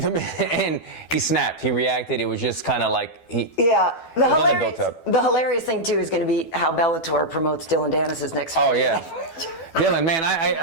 him in and he snapped. He reacted. It was just kind of like The hilarious thing too is going to be how Bellator promotes Dillon Danis' next fight. Oh yeah. Dillon, man,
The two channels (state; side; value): late; right; 12 ms